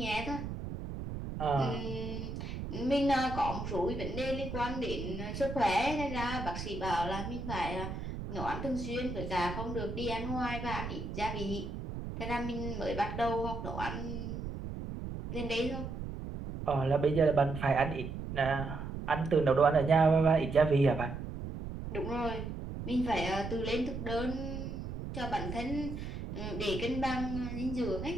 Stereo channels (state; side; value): noise; right; rumble, 7 dB below the sound